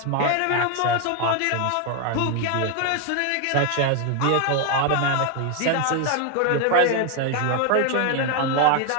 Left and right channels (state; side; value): different; both; correlation 0.01